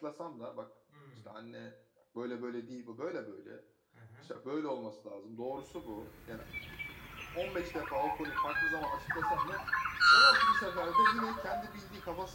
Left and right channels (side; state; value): both; identical; correlation 1.00